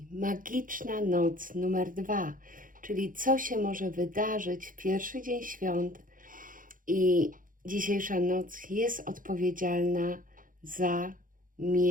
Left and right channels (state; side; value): late; left; 0.40 ms